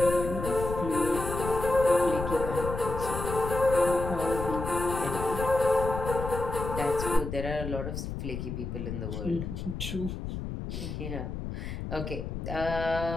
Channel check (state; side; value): noise; left; rumble, 6 dB below the sound